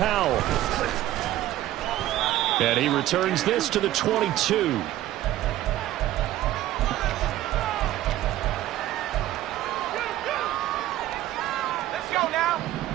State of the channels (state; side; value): quieter; left; 14.3 dB